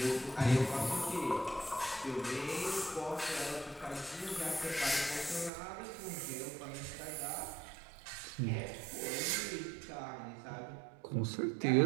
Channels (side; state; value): left; drops out; at 5.5 s